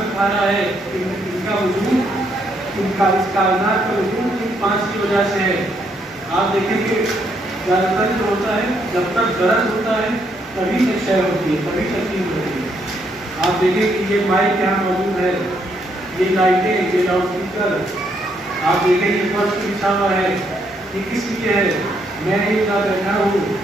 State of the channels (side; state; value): both; normal; correlation 0.74